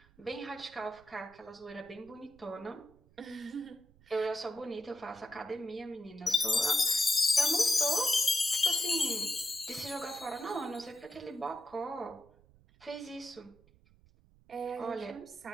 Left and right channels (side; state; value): right; noise; rumble, 28 dB below the sound